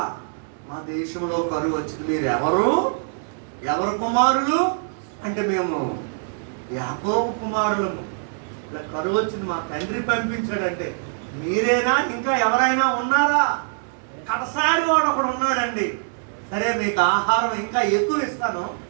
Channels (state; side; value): silent; left; digital silence